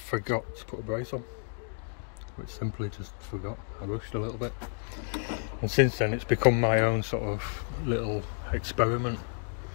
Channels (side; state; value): right; silent; 57 dB below the other